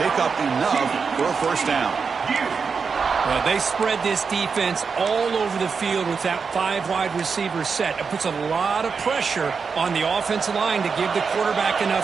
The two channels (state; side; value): quieter; left; 5.5 dB